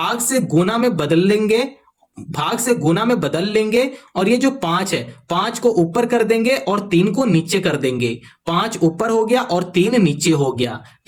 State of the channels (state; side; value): identical; both; correlation 1.00